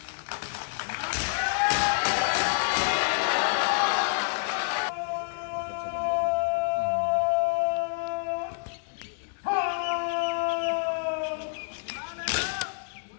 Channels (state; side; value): silent; right; digital silence